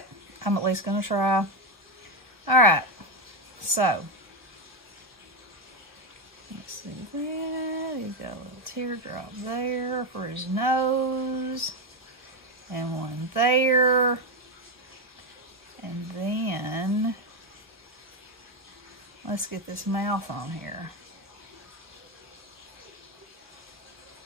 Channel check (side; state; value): both; normal; correlation 0.08